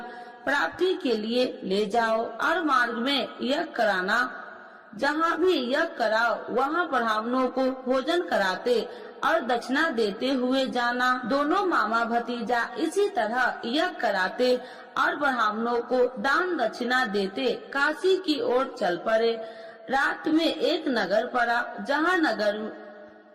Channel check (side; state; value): both; identical; correlation 1.00